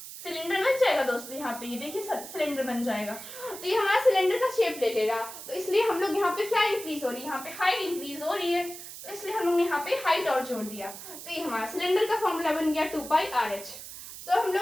सिलेंडर बन जाएगा दोस्तों। यहाँ पे ये देखिए सिलेंडर बन जाएगा, तो ये हमारा सिलेंडर का शेप ले लेगा। तो इसलिए हम लोग यहाँ पे क्या इंक्रीज हो रही है, यहाँ पे हाइट इंक्रीज हो रही है, तो इसलिए हम लोग ने यहाँ पे हाइट और जोड़ दिया। तो ये हमारा सिलेंडर का फॉर्मूला बन गया 2πRH। तो हम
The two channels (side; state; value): right; noise; hiss, 12 dB below the sound